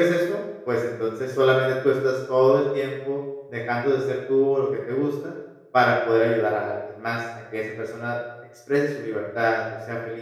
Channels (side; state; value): both; identical; correlation 1.00